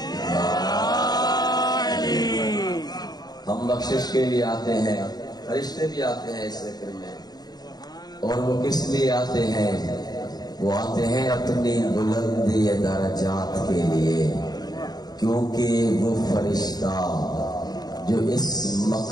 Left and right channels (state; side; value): late; right; 0.19 ms